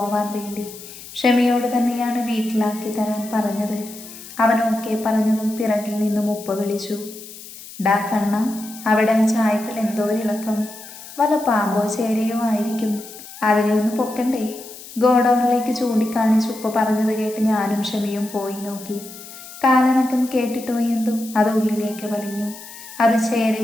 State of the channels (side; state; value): left; noise; hiss, 15 dB below the sound